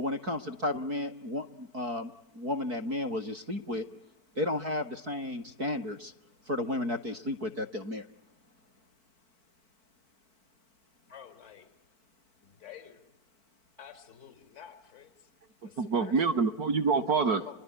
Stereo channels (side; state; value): left; late; 4.5 ms